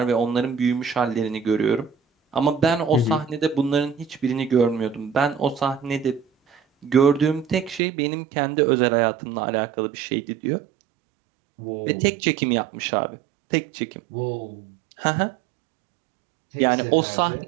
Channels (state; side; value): drops out; left; at 7.8 s